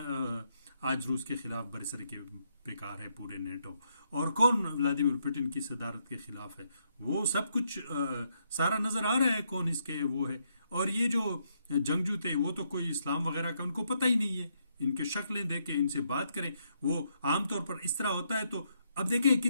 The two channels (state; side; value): inverted; both; correlation -0.76